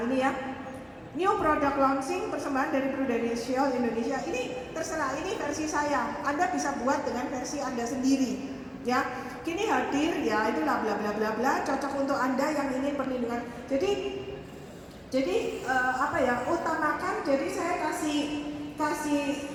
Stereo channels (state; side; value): identical; both; correlation 1.00